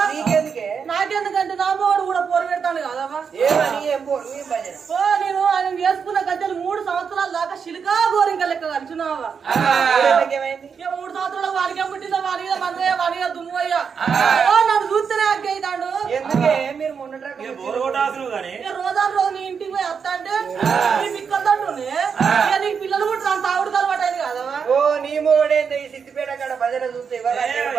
నీకెందుకే నాకెందుకంటే నా మోడు కూడా పోరు పెడతాను కాదవ్వా ఏమని ఏం పోరు ఏం భజన నేను ఆయన వేసుకున్న గద్దెలు 3 సంవత్సరాల దాకా శిలికా గోరింక లెక్క కలిసినావా ఏమైంది 3 సంవత్సరాలు వాడికే పుట్టిందా వాడిగా మందయ్య వాడిగా దుమ్ము అయ్యా నన్ను చూస్తేనే అగ్గైతాడు ఎందుకే మీరు మొన్న రోజు నీ ఇంటికి పోయి వస్తా అంటే నీ పిక్కలంటుండే నీకు పిల్లలు కూడా అంత ఆవిడ అలవాటు అయింది కదవా ఓ నీ మొగడేంది ఈ సిద్దిపేట కాడ భజన చూస్తే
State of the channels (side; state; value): left; quieter; 6.4 dB